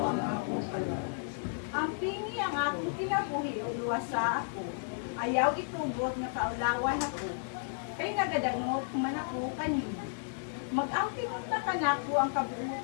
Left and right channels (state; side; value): silent; right; digital silence